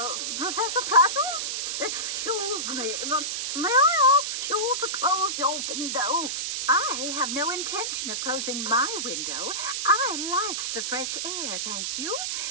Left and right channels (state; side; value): noise; right; hiss, 2 dB below the sound